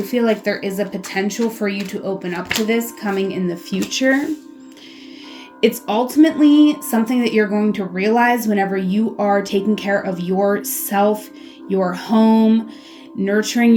feel like there is a potential for you to open up to this coming in the future. It's ultimately something that you're going to realize whenever you are taking care of yourself, your home, nurturing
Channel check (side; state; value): both; identical; correlation 1.00